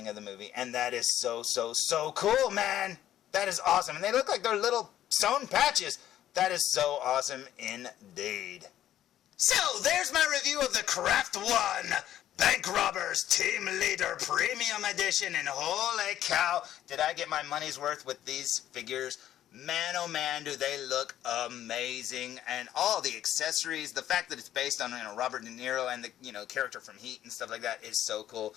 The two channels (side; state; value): right; quieter; 12.0 dB